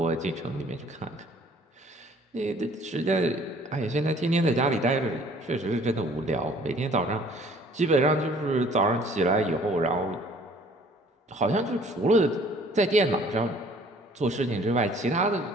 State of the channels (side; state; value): both; normal; correlation 0.55